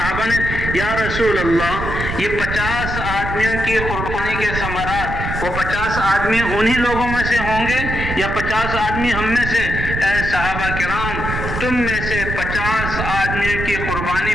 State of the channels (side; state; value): right; noise; rumble, 5 dB below the sound